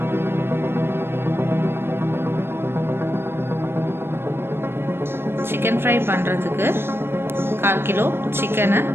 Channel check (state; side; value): late; left; 0.11 ms